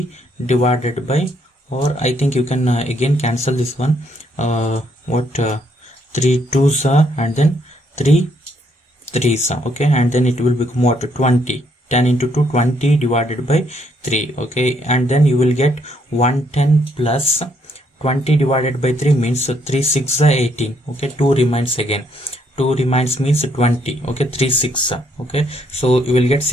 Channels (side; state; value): both; normal; correlation 0.71